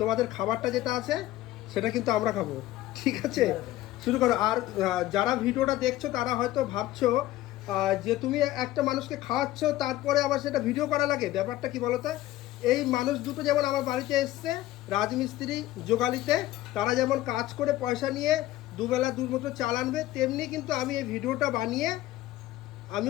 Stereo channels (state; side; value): quieter; right; 15.3 dB